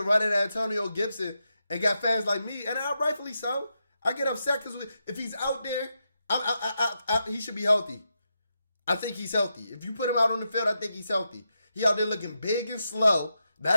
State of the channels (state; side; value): inverted; both; correlation -0.86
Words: running Antonio Gibson and got fans like me, and rightfully so. I get upset because if he's out there He should be healthy. I think he's healthy. If you put him out on the field, I think he's healthy. He out there looking big and slow,